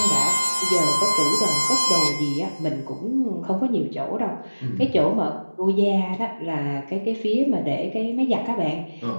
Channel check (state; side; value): inverted; both; correlation -1.00